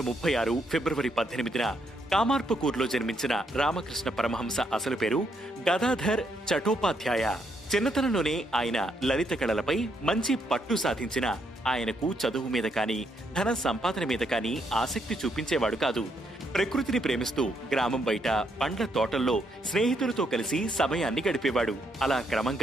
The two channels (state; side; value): normal; both; correlation 0.75